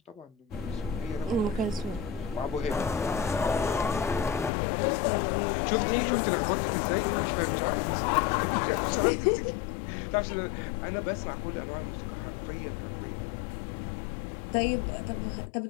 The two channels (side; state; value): right; drops out; at 4.5 s